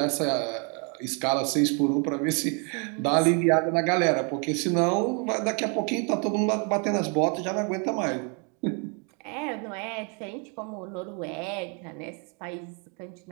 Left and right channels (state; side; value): quieter; left; 36.8 dB